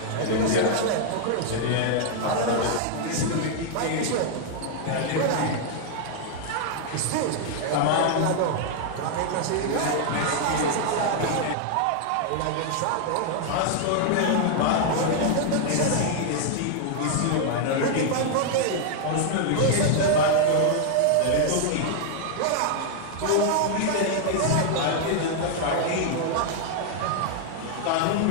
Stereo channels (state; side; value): different; both; correlation 0.00